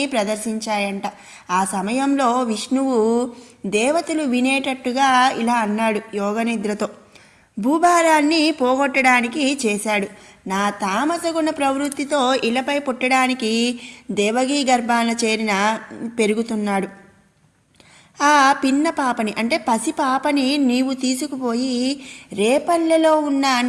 ప్రదర్శించాయంట. ఆ సమయంలో విష్ణువు దేవతలు వినేటట్టుగా ఇలా అన్నాడు యోగనిద్రతో. భూభారాన్ని పోగొట్టడానికి చేశాడు. నా తామసగుణ ప్రవృత్తితో ఇలపై పుట్టడానికి దేవగీ గర్భాన చేరిన పెరుగుతున్నాడు. ఆ పిన్న పాపని అంటే పసి పాపని నీవు తీసుకుపోయి రేపల్లెలో ఉన్న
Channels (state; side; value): identical; both; correlation 1.00